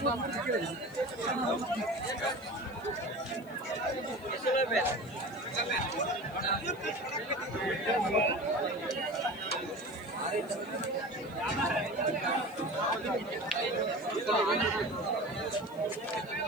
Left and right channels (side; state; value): left; noise; hiss, 26 dB below the sound